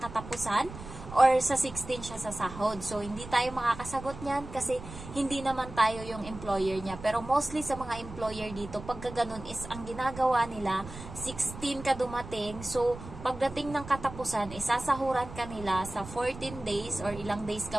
or sa 16 siya sasahod. So hindi tayo makakasagot niyan kasi hindi naman tayo yung employer niya. Pero mostly sa mga employer dito, pagka ganun is ang ginagawa nila, 16 ka dumating. So pagdating ng katapusan, isasahuran ka nila sa 14 days or ilang days ka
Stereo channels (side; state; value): right; noise; rumble, 13 dB below the sound